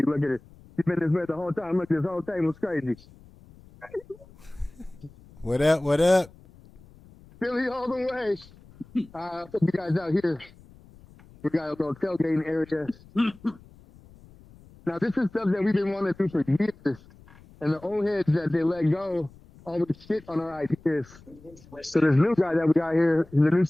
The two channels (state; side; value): noise; left; rumble, 24 dB below the sound